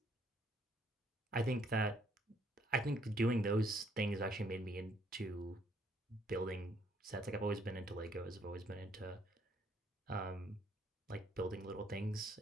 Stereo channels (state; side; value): normal; both; correlation 0.67